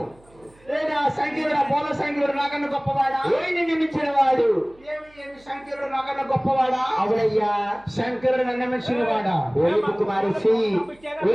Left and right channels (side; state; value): right; noise; hum, 28 dB below the sound